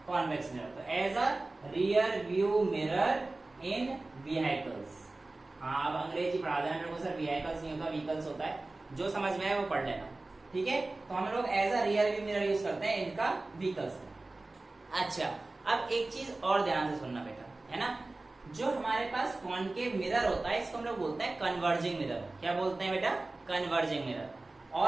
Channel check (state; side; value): quieter; left; 3.1 dB